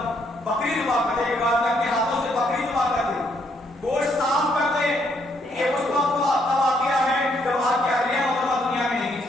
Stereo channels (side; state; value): both; normal; correlation 0.72